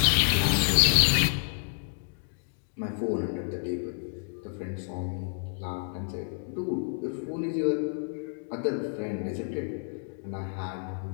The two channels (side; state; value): right; silent; 58 dB below the other